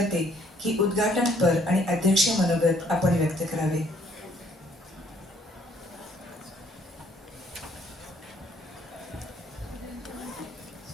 की उद्घाटनपर आणि अध्यक्ष मनोगत आपण व्यक्त करावे.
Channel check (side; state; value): both; normal; correlation 0.64